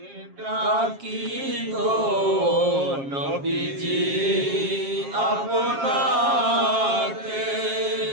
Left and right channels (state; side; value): late; left; 7.4 ms